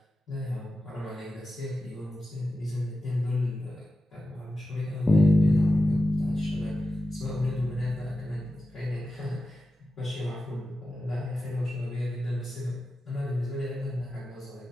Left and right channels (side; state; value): both; normal; correlation 0.92